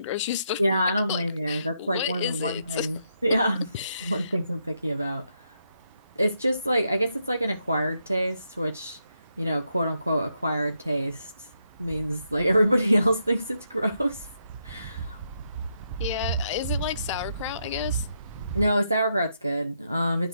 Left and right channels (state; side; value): inverted; both; correlation -0.80